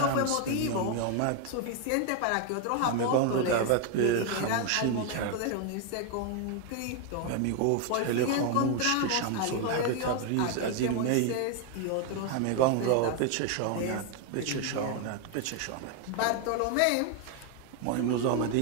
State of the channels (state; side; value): different; both; correlation 0.01